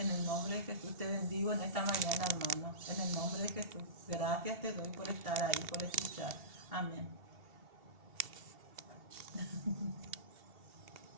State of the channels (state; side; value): late; left; 2.7 ms